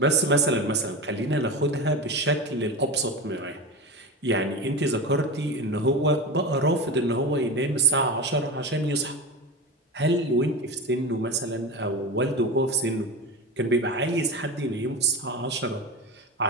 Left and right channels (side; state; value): both; normal; correlation 0.25